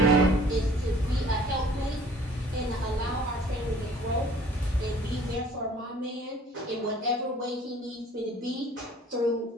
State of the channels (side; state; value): both; normal; correlation 0.53